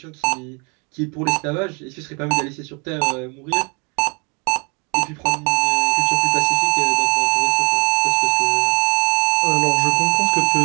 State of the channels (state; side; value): quieter; left; 32.5 dB